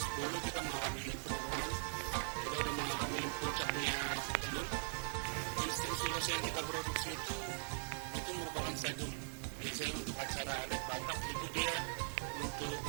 kita mengalami penurunan. Kita udah mengalami puncaknya tenun. Jenis-jenis ulos yang kita produksi itu merupakan sadum. Biasanya untuk acara adat Batak itu dia untuk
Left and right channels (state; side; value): silent; left; 50 dB below the other